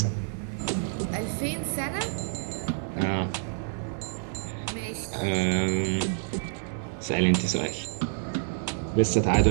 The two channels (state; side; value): silent; left; 59 dB below the other